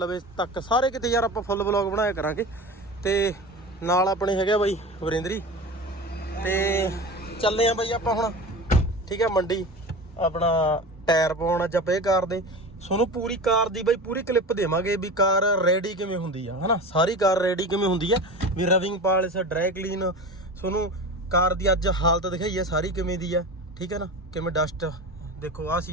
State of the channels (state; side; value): normal; both; correlation 0.31